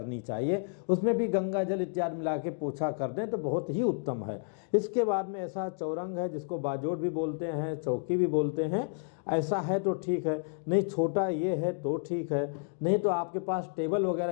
चाहिए, उसमें भी गंगा जल इत्यादि मिला के पोछा कर दें तो बहुत ही उत्तम है। इसके बाद में ऐसा चौरंग है जिसको बाजोड़ भी बोलते हैं, चौकी भी बोलते हैं, ऐसा है तो ठीक है, नहीं छोटा ये है तो ठीक है, नहीं तो आपके पास टेबल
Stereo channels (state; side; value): silent; right; digital silence